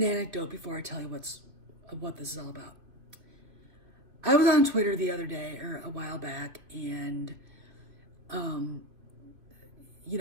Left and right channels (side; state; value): left; late; 2.7 ms